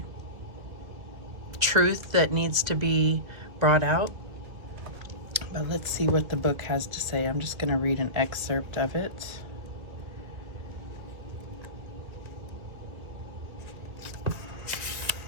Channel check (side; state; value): left; late; 2.4 ms